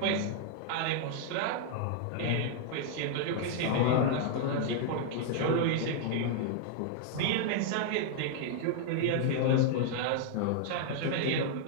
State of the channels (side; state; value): both; different; correlation 0.00